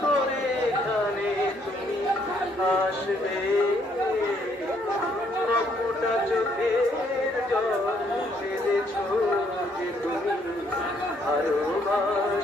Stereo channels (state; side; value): normal; both; correlation 0.69